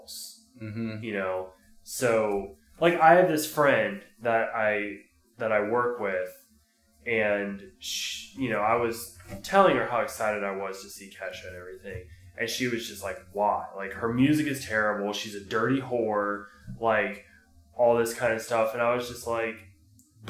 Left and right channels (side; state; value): both; identical; correlation 1.00